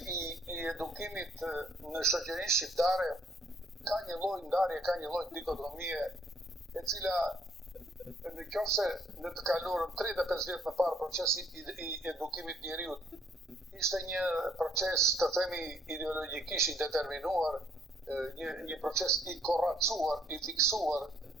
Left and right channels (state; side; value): normal; both; correlation 0.65